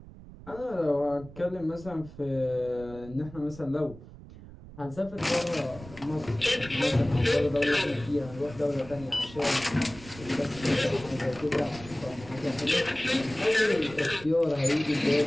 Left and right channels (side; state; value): right; noise; rumble, 17 dB below the sound